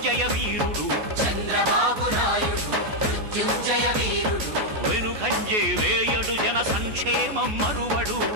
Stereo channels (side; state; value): left; late; 14 ms